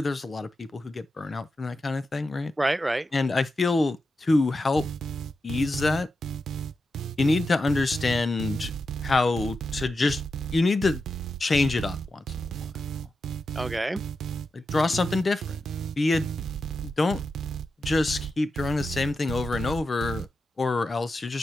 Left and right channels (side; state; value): both; normal; correlation 0.89